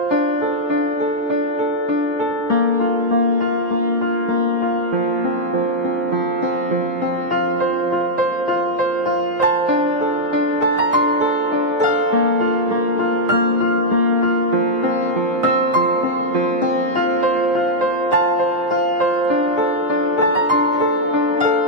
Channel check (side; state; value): both; normal; correlation -0.03